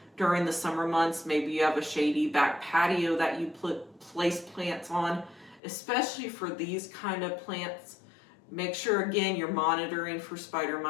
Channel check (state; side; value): drops out; right; at 5.6 s